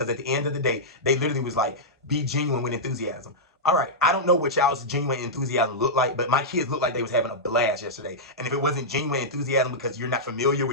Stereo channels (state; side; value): normal; both; correlation -0.10